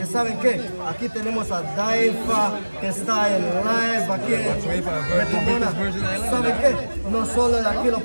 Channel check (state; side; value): inverted; both; correlation -1.00